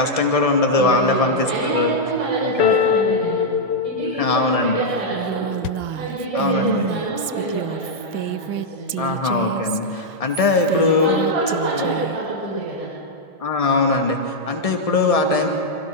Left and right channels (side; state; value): right; late; 1.7 ms